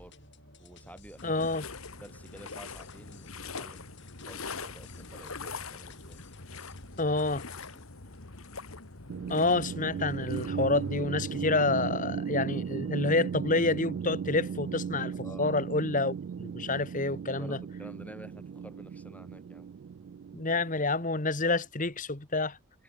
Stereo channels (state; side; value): normal; both; correlation 0.04